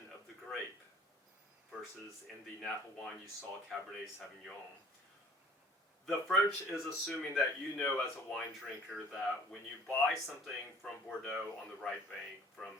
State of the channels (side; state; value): both; normal; correlation 0.50